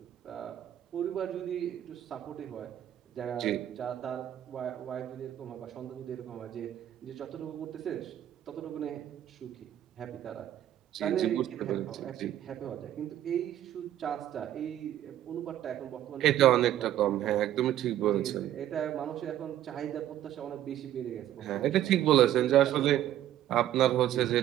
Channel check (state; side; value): quieter; left; 12.1 dB